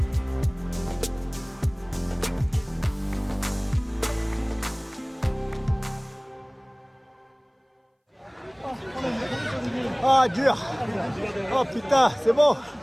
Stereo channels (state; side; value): identical; both; correlation 1.00